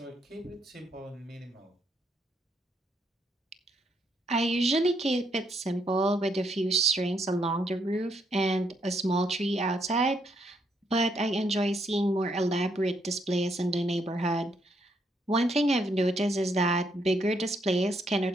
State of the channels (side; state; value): both; normal; correlation 0.74